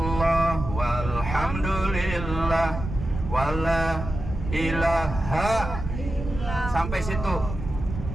walhamdulillah wala ilaha. Sampai situ.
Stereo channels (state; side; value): noise; right; rumble, 7 dB below the sound